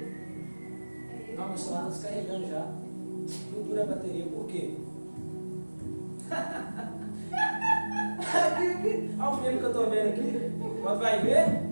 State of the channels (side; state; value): both; inverted; correlation -1.00